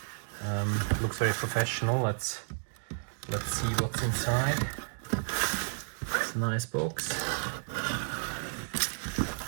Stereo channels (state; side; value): silent; left; digital silence